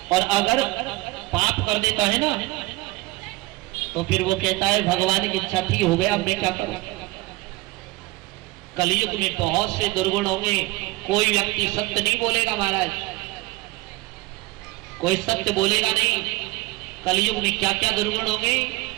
और अगर पाप कर देता है ना तो फिर वो कहता है भगवान की इच्छा थी, हो गया, मैं क्या करूं। कलयुग में बहुत से दुर्गुण होंगे, कोई व्यक्ति सत्य नहीं बोलेगा महाराज, कोई सत्य बोलेगा नहीं। कलयुग में क्या क्या दुर्गुण होंगे।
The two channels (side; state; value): left; quieter; 21.2 dB